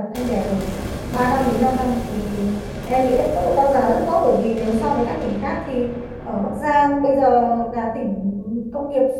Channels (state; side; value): identical; both; correlation 1.00